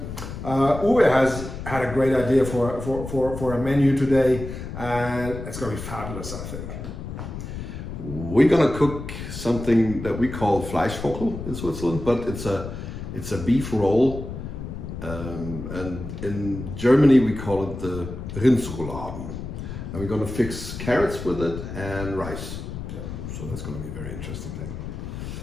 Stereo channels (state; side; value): noise; left; rumble, 8 dB below the sound